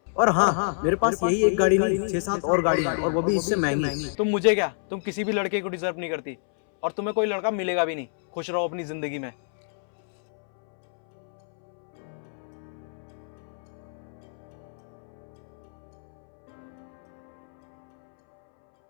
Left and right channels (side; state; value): right; silent; 60 dB below the other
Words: और हाँ, मेरे पास यही एक गाड़ी नहीं, 6-7 और गाड़ी है, और वो भी इससे महंगी। तुम मुझे क्या, तुम किसी भी लड़के को डिजर्व नहीं करती, और तुम्हें कोई लड़का मिलेगा भी नहीं। खुश रहो अपनी जिंदगी में।